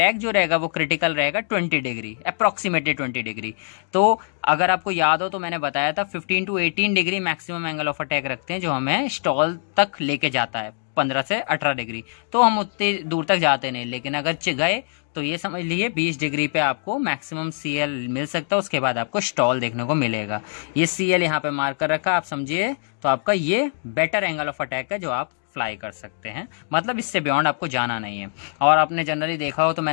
जो रहेगा वो क्रिटिकल रहेगा 20 डिग्री, अप्रोक्सीमेटली 20 डिग्री। तो अगर आपको याद हो तो मैंने बताया था 15 to 18 degree maximum angle of attack रखते हैं जो हमें स्टॉल तक लेके जाता है, 15 से 18 डिग्री। तो हम उतनी दूर तक जाते नहीं, लेकिन अगर गए तो ये समझ लीजिए 20 डिग्री पे आपको मैक्सिमम CL मिल सकता है, उसके बाद आपको स्टॉल देखने को मिलेगा। ये CL यहाँ पे मार्क कर रखा आप समझिए, तो आपका ये बेटर एंगल ऑफ अटैक है जो आप फ्लाई कर सकते हैं, मतलब इससे बियॉन्ड आपको जाना नहीं है। और आपने जनरली देखा हो तो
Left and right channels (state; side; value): silent; right; digital silence